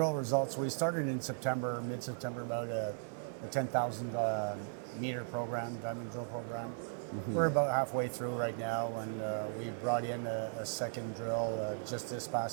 results, we started in September, mid-September, about a 10,000 meter program, diamond drill program. Mm-hmm. We're about halfway through right now, and we brought in a second drill just this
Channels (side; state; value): left; silent; digital silence